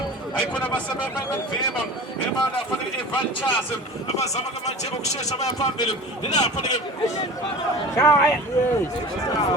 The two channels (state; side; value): normal; both; correlation 0.37